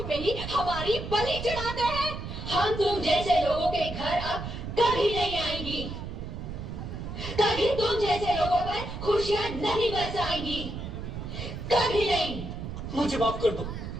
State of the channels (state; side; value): noise; right; rumble, 7 dB below the sound